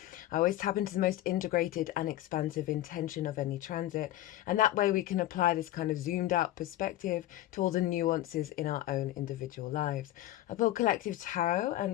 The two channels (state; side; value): quieter; right; 14.5 dB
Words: I always tap into the most integrated and expansive intention of any transit, and that way we can apply this kind of zoomed out perspective to all the nuances in our own individual lives. I pulled collective tarot,